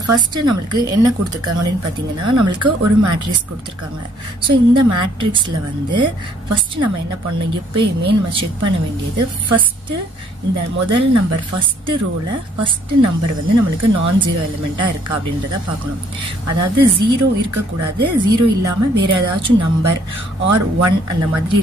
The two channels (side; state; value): both; normal; correlation 0.63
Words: ஃபர்ஸ்ட் நம்மளுக்கு என்ன கொடுத்துருக்காங்க அப்படின்னு பாத்தீங்கன்னா நம்மளுக்கு ஒரு மேட்ரிக்ஸ் கொடுத்துருக்காங்க. ஸோ இந்த மேட்ரிக்ஸ்ல வந்து ஃபர்ஸ்ட் நம்ம என்ன பண்ணணும், எப்பயுமே நம்ம செக் பண்ண வேண்டியது ஃபர்ஸ்ட் இந்த முதல் நம்பர் ஃபர்ஸ்ட் ரோல ஃபர்ஸ்ட் நம்பர் வந்து நம்மளுக்கு நான் ஜீரோ எலிமெண்டா இருக்கா அப்படின்றத பார்க்கணும். அதாவது 0 இருக்கக்கூடாது, 0 இல்லாம வேற ஏதாச்சும் நம்பர் ஆர் 1 அந்த மாதிரி